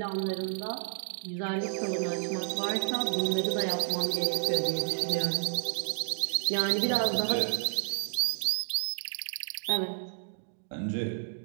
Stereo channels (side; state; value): left; silent; digital silence